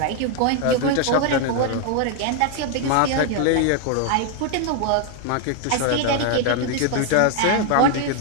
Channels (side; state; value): both; different; correlation 0.00